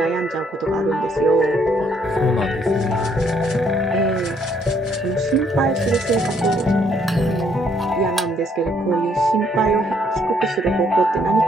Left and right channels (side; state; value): both; normal; correlation 0.68